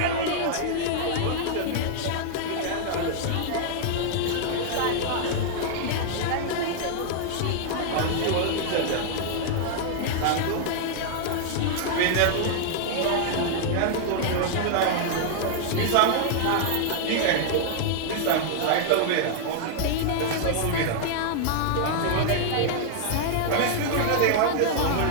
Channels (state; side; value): different; both; correlation -0.01